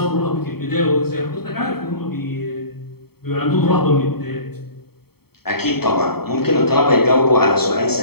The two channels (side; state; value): right; late; 0.95 ms